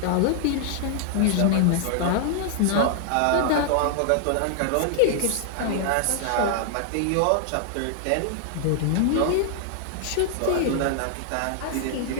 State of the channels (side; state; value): both; different; correlation -0.01